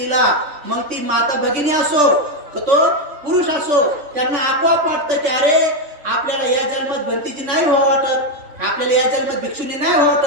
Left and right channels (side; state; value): left; late; 3.4 ms